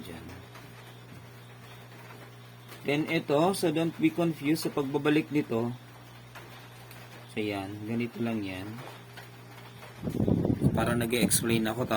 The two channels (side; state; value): both; identical; correlation 1.00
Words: dyan. Then, ito, so don't be confused sa pagbabalik nito. So, yan. Ganito lang yan. Para nag-explain ako,